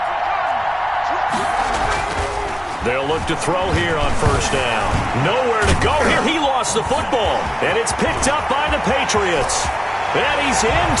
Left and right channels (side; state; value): both; identical; correlation 1.00